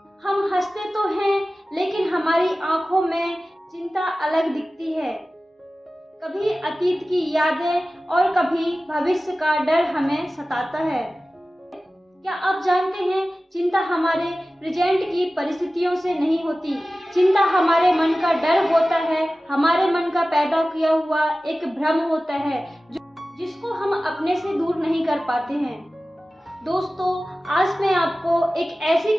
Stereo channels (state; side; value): normal; both; correlation 0.96